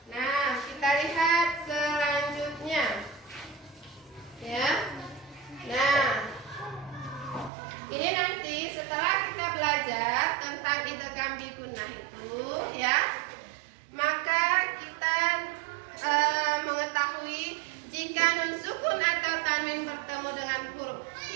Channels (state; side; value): drops out; left; at 7.5 s